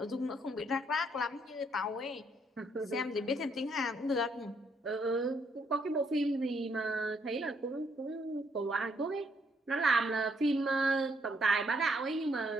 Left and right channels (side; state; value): both; normal; correlation 0.71